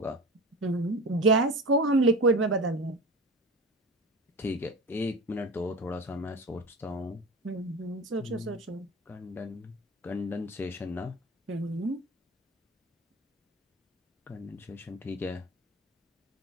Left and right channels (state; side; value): normal; both; correlation 0.31